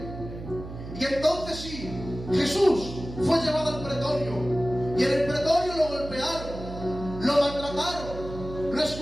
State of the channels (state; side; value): noise; right; hum, 11 dB below the sound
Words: Y entonces sí, Jesús fue llevado al pretorio, y en el pretorio lo golpearon, lo maltrataron, lo